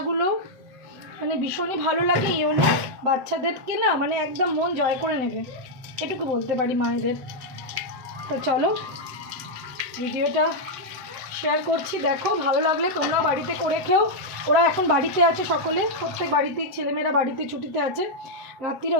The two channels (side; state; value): left; late; 7.9 ms